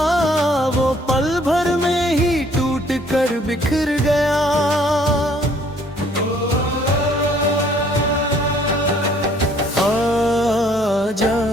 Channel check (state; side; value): normal; both; correlation 0.61